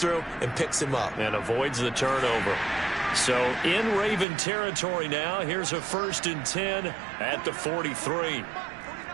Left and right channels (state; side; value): drops out; left; at 4.2 s